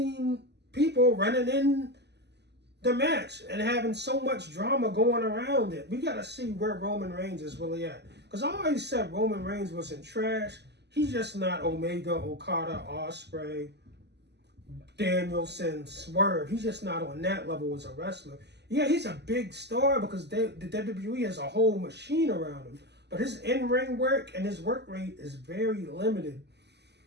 people running in the match and having so much drama going around it. We got to see where Roman Reigns is really at. Because I always said Roman Reigns wasn't trash. He's just not Omega, Okada, Ospreay, Danielson, Swerve. He's just not on that level as a wrestler. Yeah, he's a big star because the WWE has a whole machine around him. But his in-ring work and his work rate is very limited.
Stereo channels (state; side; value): late; left; 0.50 ms